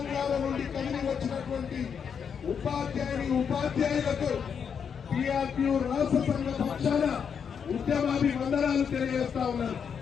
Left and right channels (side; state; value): right; quieter; 7.0 dB